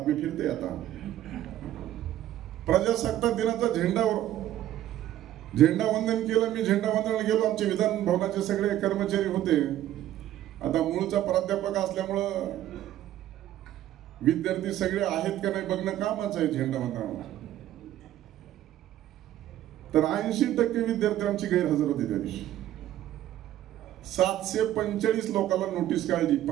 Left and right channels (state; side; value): quieter; left; 12.9 dB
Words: फिरते आता, प्रजासत्ताक दिनाचा झेंडावंदन केलं. मी झेंडावंदनाला गेलो. आमचे विधान भवनाचे सगळे कर्मचारी होते. आता मूळचा प्राध्यापक असल्यामुळं विद्यार्थी सगळे आहेत का नाही बघणं कामच आहे झेंडावंदनाला. तर 80% विद्यार्थी आमची गैरहजर होते त्या दिवशी. 745 लोकांना नोटीस काढली,